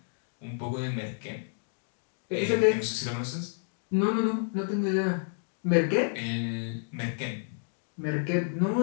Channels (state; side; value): silent; right; digital silence